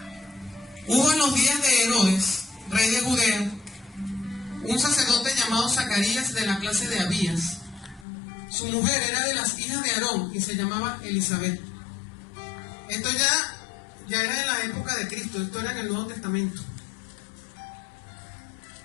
Hubo en los días de Herodes, rey de Judea, un sacerdote llamado Zacarías de la clase de Abías. Su mujer era de las hijas de Aarón y se llamaba Elizabeth. Esto ya era en la época de Cristo, esto era en el Nuevo Testamento.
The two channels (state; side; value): drops out; right; at 8.1 s